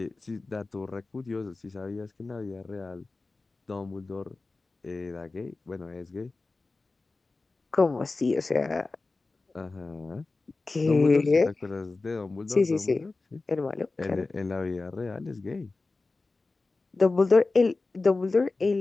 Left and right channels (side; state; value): right; quieter; 3.5 dB